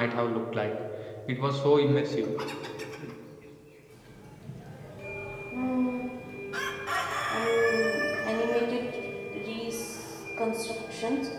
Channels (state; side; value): identical; both; correlation 1.00